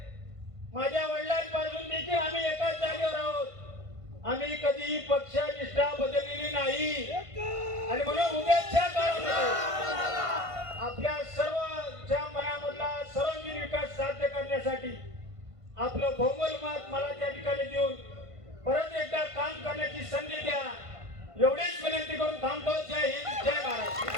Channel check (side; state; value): left; late; 1.5 ms